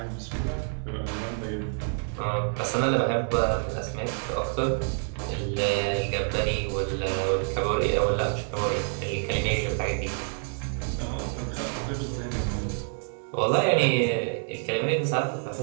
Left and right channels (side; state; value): left; silent; 56 dB below the other